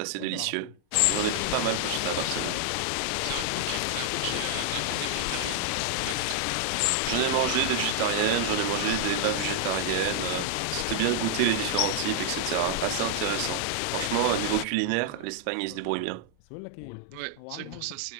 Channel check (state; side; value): different; both; correlation -0.01